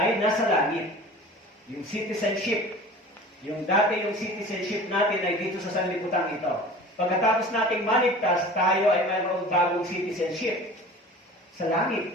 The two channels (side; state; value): both; normal; correlation 0.40